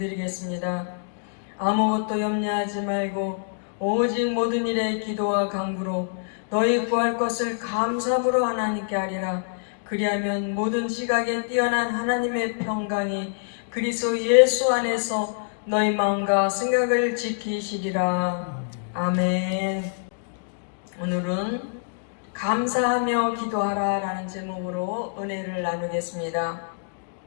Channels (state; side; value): silent; right; digital silence